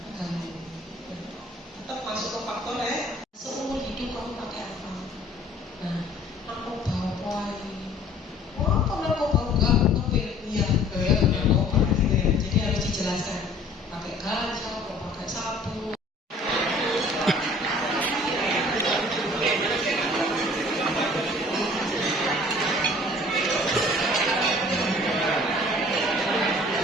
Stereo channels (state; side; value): normal; both; correlation 0.52